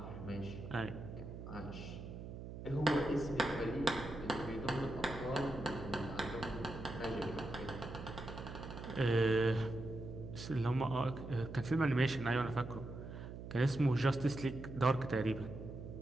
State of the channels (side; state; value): right; noise; hum, 10 dB below the sound